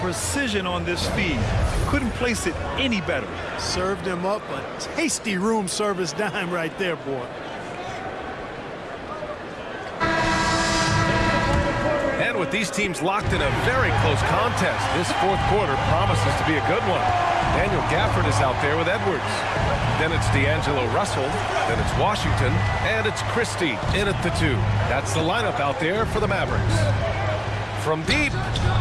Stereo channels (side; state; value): both; identical; correlation 1.00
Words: precision on this feed. Couldn't place it any better. Served him up a tasty room service dime right there, boy. And with these teams locked in a very close contest, this fourth quarter promises to be a good one. Daniel Gafford is out there with Edwards. Then it's D'Angelo Russell. Then it's Washington. And it's Christie in at the 2. That's the lineup out there for the Mavericks. From deep.